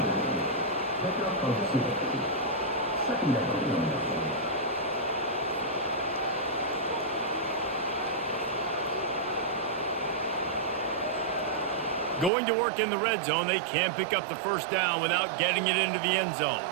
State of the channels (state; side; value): drops out; left; at 12.3 s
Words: Going to work in the red zone, they can't pick up the first down without getting it into the end zone.